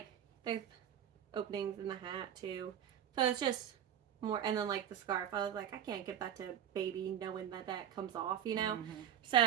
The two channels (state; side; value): quieter; left; 9.8 dB